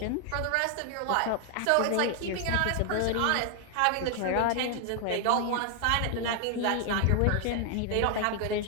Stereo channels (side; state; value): both; different; correlation 0.00